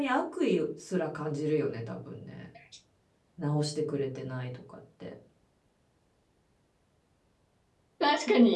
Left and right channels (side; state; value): both; identical; correlation 1.00